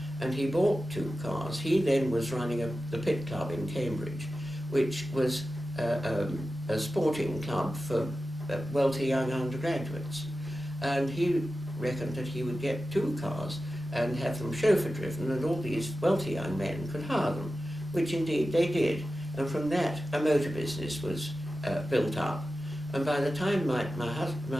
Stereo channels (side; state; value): both; normal; correlation 0.93